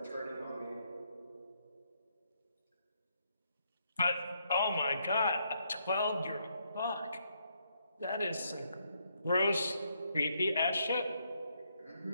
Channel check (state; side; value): inverted; both; correlation -0.75